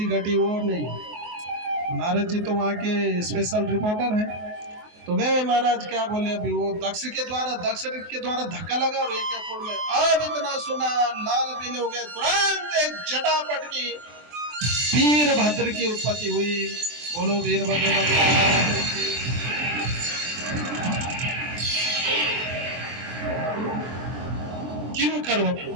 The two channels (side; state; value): left; late; 24 ms